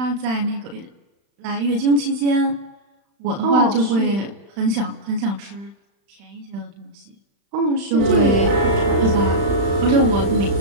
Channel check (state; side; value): late; left; 35 ms